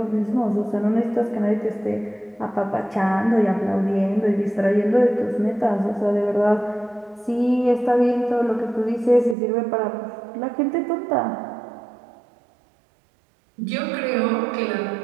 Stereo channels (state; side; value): drops out; left; at 9.3 s